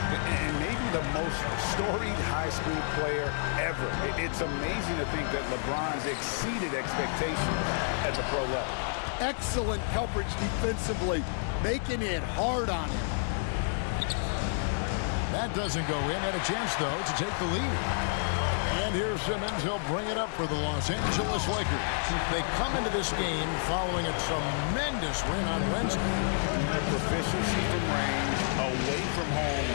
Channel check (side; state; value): right; silent; digital silence